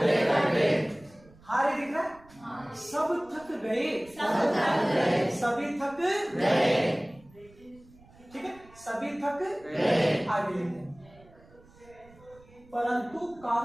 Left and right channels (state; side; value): noise; right; rumble, 26 dB below the sound